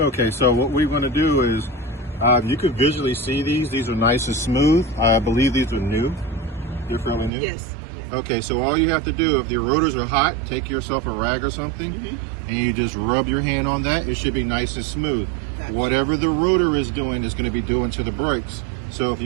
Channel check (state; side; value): drops out; left; at 7.3 s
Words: so what we're going to do is, you can visually see these. These are nice and smooth. I believe these are new. They're fairly new? Yes. Okay, so all you have to do, if your rotors are hot, take yourself a rag or something, and you just rub your hand on that. It should be nice and smooth. Gotcha. Whatever the rotor is doing is going to be doing to the brakes. So if